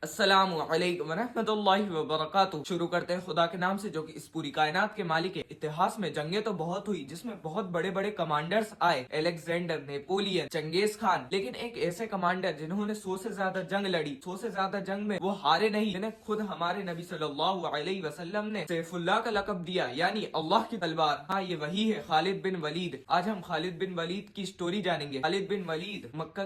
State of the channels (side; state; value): both; identical; correlation 1.00